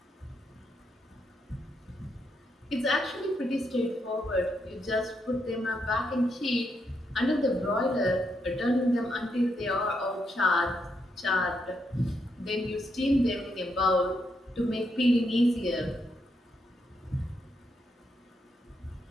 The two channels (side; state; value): both; normal; correlation 0.79